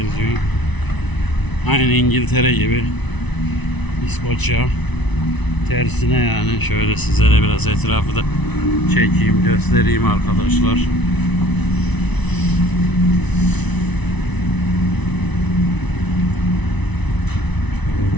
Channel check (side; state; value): right; late; 1.0 ms